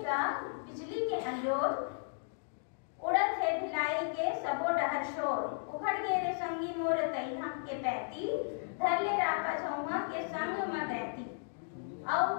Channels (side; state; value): right; silent; digital silence